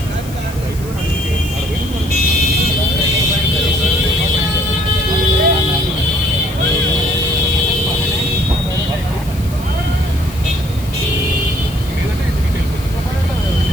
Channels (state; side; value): noise; left; hiss, 18 dB below the sound